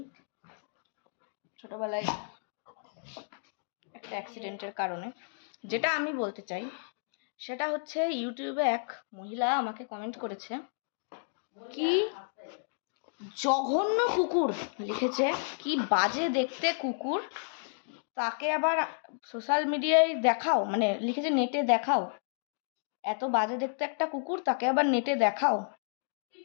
ছোটবেলায় একটা অ্যাক্সিডেন্টের কারণে। যেটা আমি বলতে চাই সেটা হচ্ছে, ইউটিউবে এক মহিলা আমাকে কমেন্ট করেছে, কি জঘন্য কুকুর লিখেছে, কি বাজে দেখতে কুকুর, তাকে আবার সোশ্যাল মিডিয়ায় দেখাও, মানে লিখেছে নেটে দেখাও, এত বাজে দেখতে একটা কুকুর, তাকে আবার নেটে দেখাও।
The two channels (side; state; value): right; silent; digital silence